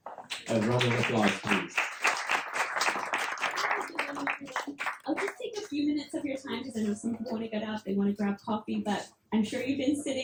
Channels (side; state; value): both; identical; correlation 1.00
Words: A round of applause, please. I'll just take a few minutes of your time because I know some people want to get up, they want to grab coffee, but I'm sure you've been